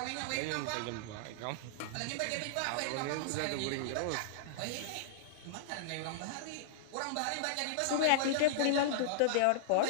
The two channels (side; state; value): both; different; correlation -0.02